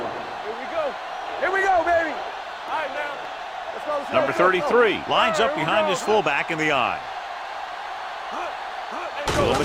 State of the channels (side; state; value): both; identical; correlation 1.00